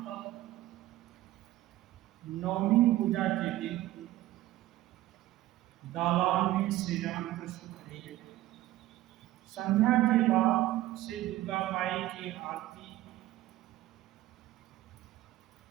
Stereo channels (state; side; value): quieter; left; 15.5 dB